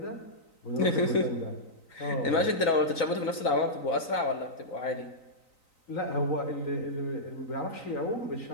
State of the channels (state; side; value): late; right; 3.9 ms